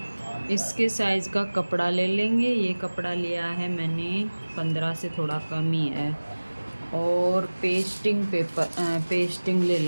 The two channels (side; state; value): both; inverted; correlation -1.00